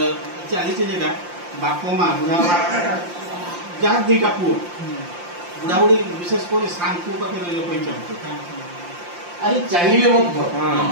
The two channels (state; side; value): late; left; 5.7 ms